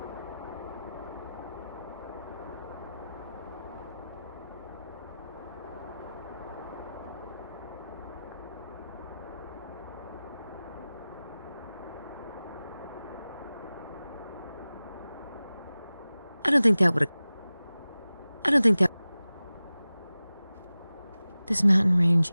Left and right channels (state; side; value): inverted; both; correlation -0.96